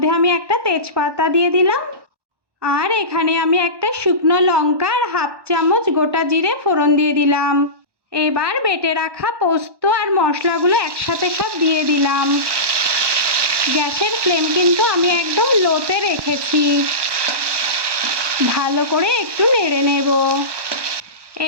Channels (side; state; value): left; late; 1.1 ms